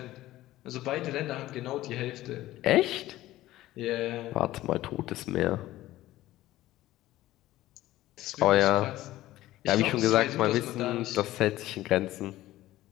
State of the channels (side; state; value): right; quieter; 15.7 dB